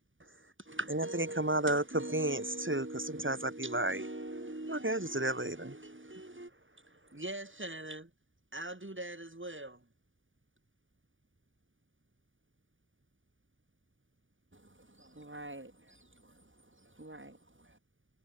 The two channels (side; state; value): left; late; 0.57 ms